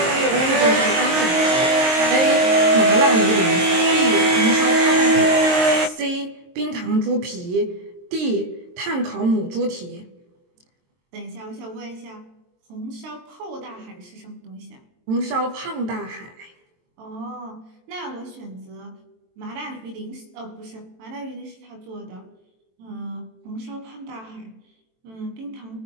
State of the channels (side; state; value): left; late; 23 ms